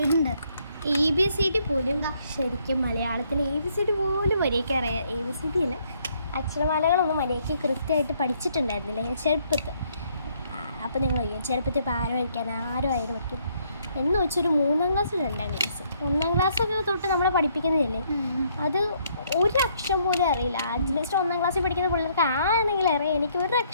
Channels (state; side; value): inverted; both; correlation -0.69